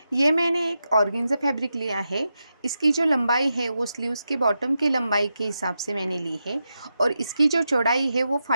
ये मैंने एक ऑर्गेन्जा फैब्रिक लिया है। इसकी जो लंबाई है वो स्लीव्स के बॉटम की लंबाई के हिसाब से मैंने ली है और इसकी जो चौड़ाई है वो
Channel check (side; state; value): both; inverted; correlation -0.88